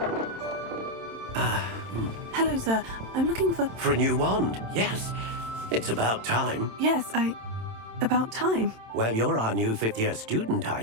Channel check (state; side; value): late; left; 27 ms